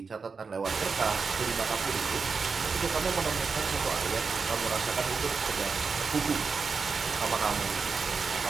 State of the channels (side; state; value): left; quieter; 5.0 dB